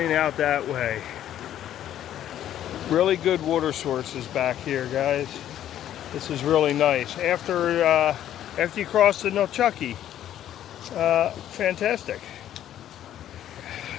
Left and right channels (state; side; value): quieter; right; 11.4 dB